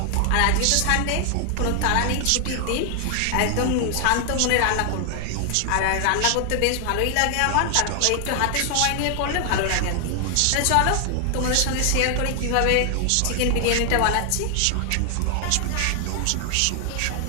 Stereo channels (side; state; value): both; different; correlation 0.00